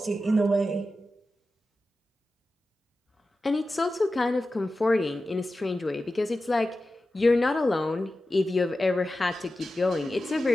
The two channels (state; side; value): normal; both; correlation 0.93